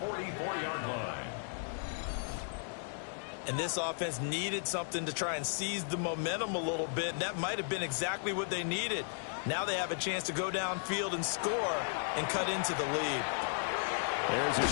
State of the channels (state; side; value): silent; right; digital silence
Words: 44-yard line. And this offense needed something to try and seize the momentum a little bit, and that might have been exactly what they needed. Now they have a chance to go downfield and score and cut into the lead. There's a